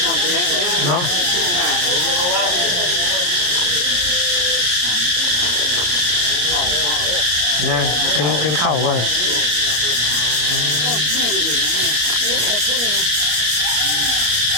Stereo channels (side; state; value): left; late; 34 ms